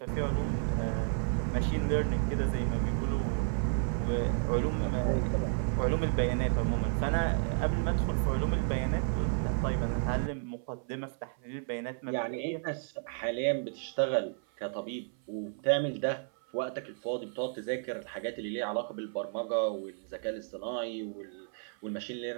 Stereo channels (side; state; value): left; silent; 56 dB below the other